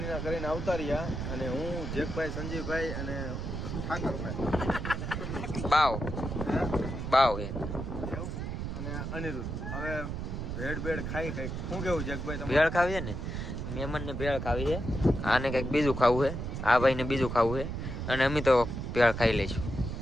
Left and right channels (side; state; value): right; noise; rumble, 4 dB below the sound